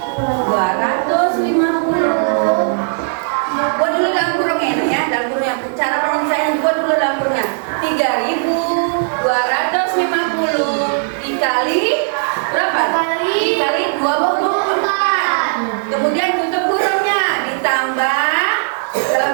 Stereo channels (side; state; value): left; silent; digital silence